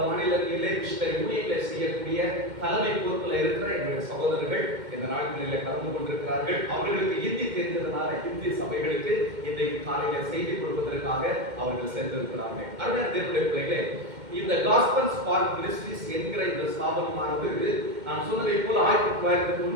மாநிலங்களிலே மிஷனரி ஊழியர்களை செய்யக்கூடிய தலைமை பொறுப்பில் இருக்கிற எங்களுடைய சகோதரர்கள் இந்த நாட்களில் கலந்து கொண்டிருக்கிறார்கள். அவர்களுக்கு ஹிந்தி தெரிந்ததுனால ஹிந்தி சபைகளுக்கு இன்றைக்கு காலையில செய்தி கொடுப்பதற்காக அவர்கள் சென்றிருக்கிறார்கள். அருமையான தேவனுடைய பிள்ளைகளே, இந்த காஸ்பல் ஸ்பார்க் மினிஸ்ட்ரீஸ் என்கிற இந்த ஸ்தாபனமானது நான் சொன்னதை போல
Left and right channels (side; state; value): left; late; 2.1 ms